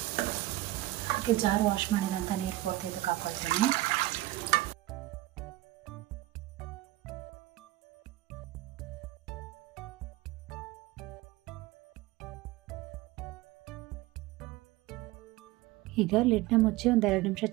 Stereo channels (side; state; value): left; quieter; 17.2 dB